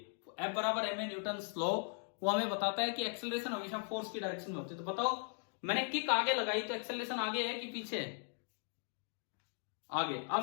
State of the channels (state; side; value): silent; right; 52 dB below the other